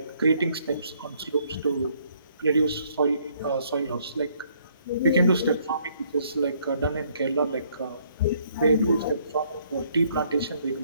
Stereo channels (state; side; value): inverted; both; correlation -0.67